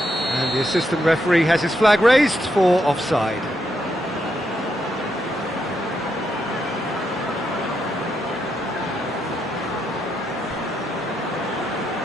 And the assistant referee has his flag raised for offside.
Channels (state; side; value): normal; both; correlation 0.80